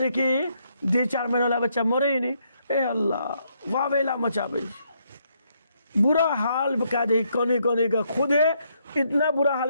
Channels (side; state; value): both; inverted; correlation -0.74